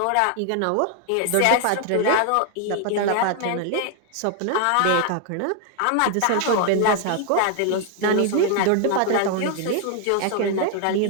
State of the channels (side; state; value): both; different; correlation 0.00